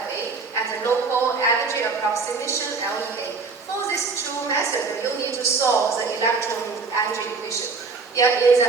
and the local energy approximation, LEA. For these two methods, you need to solve the electron energy equation. In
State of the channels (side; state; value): left; quieter; 4.5 dB